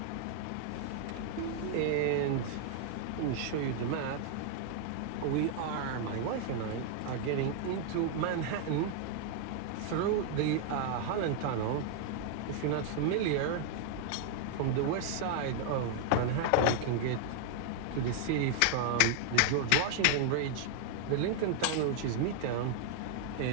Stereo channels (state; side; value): different; both; correlation 0.00